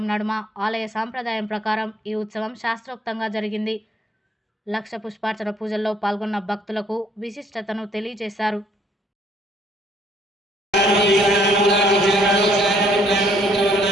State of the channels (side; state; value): both; normal; correlation 0.64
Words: నడుమ ఆలయ సాంప్రదాయం ప్రకారం ఈ ఉత్సవం శాస్త్రోక్తంగా జరిగింది. లక్ష పుష్పార్చన పూజల్లో పాల్గొన్న భక్తులకు విశిష్టతను తెలియజేశారు.